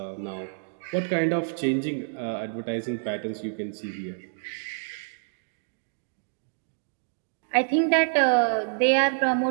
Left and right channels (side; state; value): left; silent; digital silence